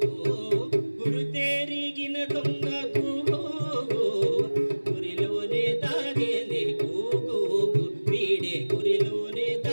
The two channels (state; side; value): inverted; both; correlation -1.00